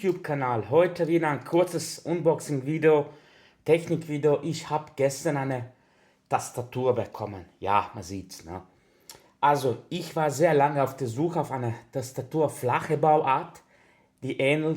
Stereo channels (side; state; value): both; identical; correlation 1.00